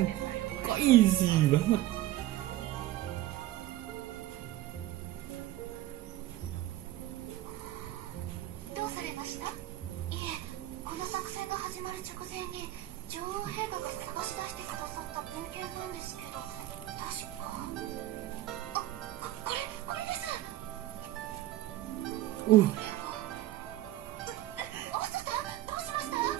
Kok easy banget.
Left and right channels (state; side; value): quieter; left; 14.8 dB